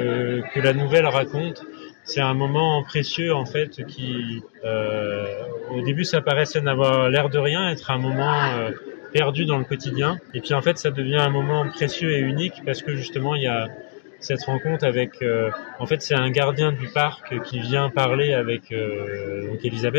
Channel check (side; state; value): right; silent; digital silence